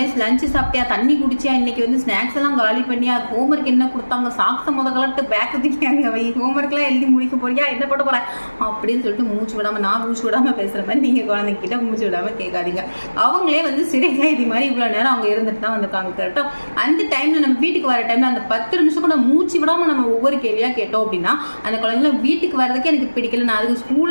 லஞ்சு சாப்பிட்டியா, தண்ணி குடிச்சியா, இன்னைக்கு வந்து ஸ்நாக்ஸ் எல்லாம் காலி பண்ணியா, ஹோம்ஒர்க் என்ன கொடுத்தாங்க, சாக்ஸ கலட்டு பேக் தூக்கியாங்க வை, ஹோம்ஒர்க் எல்லாம் எழுதி முடிக்க போறியா, என்ன பண்ண போற அப்படின்னு சொல்லிட்டு மூச்சு விடாம, நான் மூச்சு விடாம பேசுற மாதிரி நீங்க குழந்தைகிட்ட மூச்சு விடாம கேட்காதீங்க. அவங்களே வந்து சிறை கைதி மாதிரி இவ்வளவு நேரம் அவங்க இருந்துட்டு தான் வந்திருக்காங்க. கரெக்டா அந்த டைம்ல நம்ம வீட்டுக்கு வர டைம்ல அந்த 10 நிமிஷம் கூட மூச்சு விடாம நம்ம ஒவ்வொரு கேள்வியா கேட்டோம் அப்படின்னா அந்த குழந்தைங்க வீட்டுக்கு வர்றதுக்கு எனக்கு பிடிக்கல, நான் அதுக்கு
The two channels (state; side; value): inverted; both; correlation -1.00